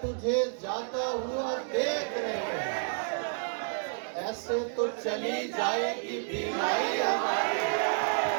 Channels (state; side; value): silent; left; digital silence